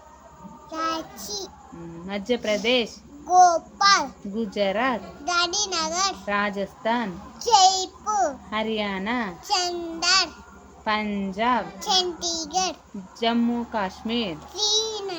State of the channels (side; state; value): both; identical; correlation 1.00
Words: రాంచీ, మధ్యప్రదేశ్, భోపాల్, గుజరాత్, గాంధీనగర్, రాజస్థాన్, జైపూర్, హర్యానా, చందర్, పంజాబ్, చండీగఢ్, జమ్మూ కాశ్మీర్,